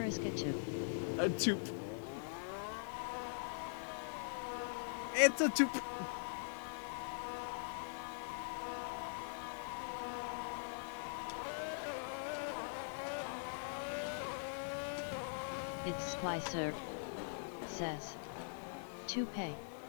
a 2. A toop. It's a toop. It's Splicer. Says. Toupee.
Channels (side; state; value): right; silent; digital silence